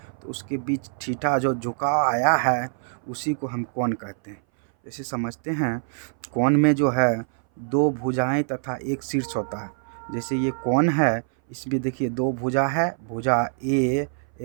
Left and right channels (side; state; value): left; silent; 59 dB below the other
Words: तो उसके बीच थीटा जो झुकाव आया है उसी को हम कोण कहते हैं। जैसे समझते हैं, कोण में जो है दो भुजाएं तथा एक शीर्ष होता है। जैसे ये कोण है, इसमें देखिए दो भुजा है, भुजा ए